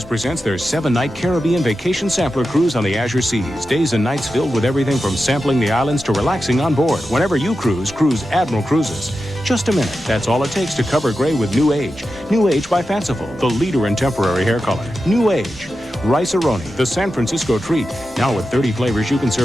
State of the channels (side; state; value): both; normal; correlation 0.91